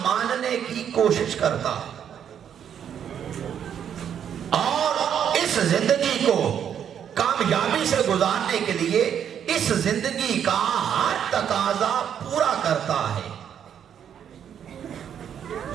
ماننے کی کوشش کرتا ہے، اور اس زندگی کو کامیابی سے گزارنے کے لیے اس زندگی کا ہر تقاضا پورا کرتا ہے۔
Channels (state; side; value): quieter; left; 8.8 dB